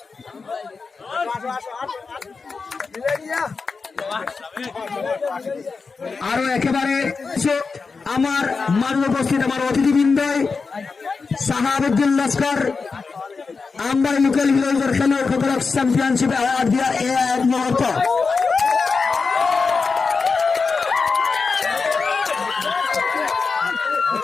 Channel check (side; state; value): right; quieter; 4.6 dB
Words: আৰু একেবাৰে আমাৰ মাজত উপস্থিত আমাৰ অতিথিবৃন্দই সাহাবুদ্দিন লস্কর আমবাড়ি লোকেল হিরোজৰ খেলুৱৈসকলক চেম্পিয়নশ্বিপ এৱাৰ্ড দিয়া এয়া এক মুহূৰ্ত।